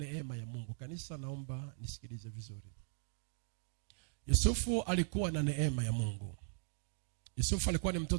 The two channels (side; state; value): left; silent; digital silence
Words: ya Mungu. Kanisa, naomba nisikilize vizuri. Yusufu alikuwa na neema ya Mungu. Yusufu alikuwa ni